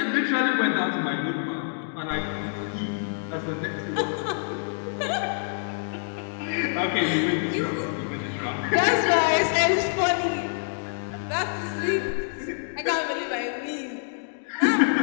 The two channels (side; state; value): right; silent; digital silence